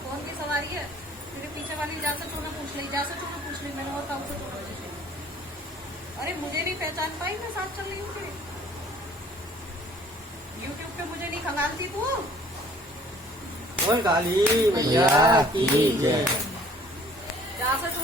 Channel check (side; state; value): both; normal; correlation 0.55